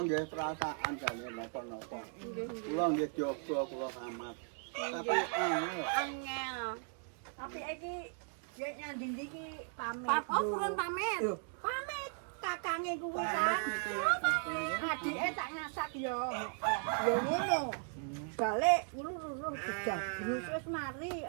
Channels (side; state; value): left; silent; 53 dB below the other